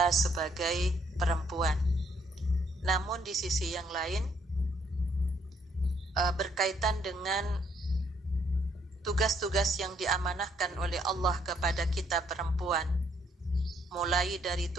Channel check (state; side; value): normal; both; correlation 0.69